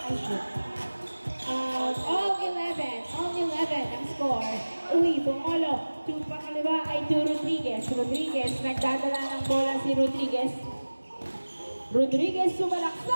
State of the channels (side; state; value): both; inverted; correlation -1.00